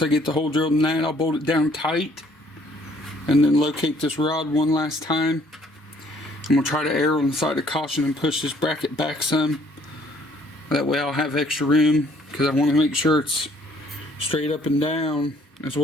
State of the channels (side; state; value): both; normal; correlation 0.62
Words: I get the hole drilled in that, I'll bolt it down tight and then locate this rod one last time. I'm gonna try to err on the side of caution and push this bracket back some. That way I'll have extra room, because I want to make sure it's straight up and down as